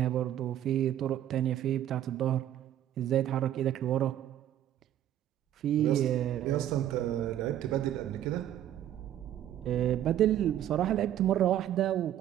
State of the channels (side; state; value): left; quieter; 11.6 dB